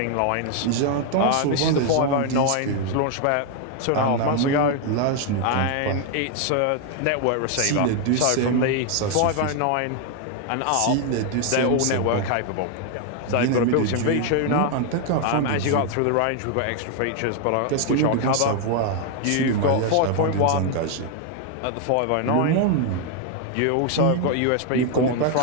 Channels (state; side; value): different; both; correlation 0.00